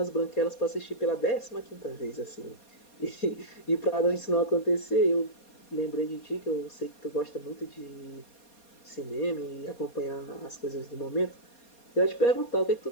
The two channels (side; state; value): right; late; 4.2 ms